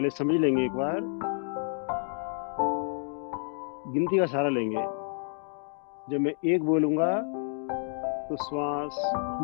समझ लेंगे, एक बार गिनती का सहारा लेंगे। जब मैं एक बोलूंगा तो श्वास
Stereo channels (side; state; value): right; silent; 58 dB below the other